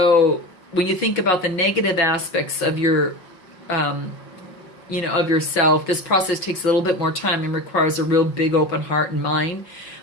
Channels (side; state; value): right; late; 5.5 ms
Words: when you think about the negative aspects of your, of yourself, this process takes a little bit more time and requires a real big open heart and mind.